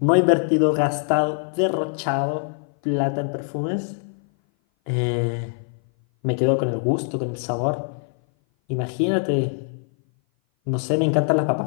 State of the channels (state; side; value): silent; right; 58 dB below the other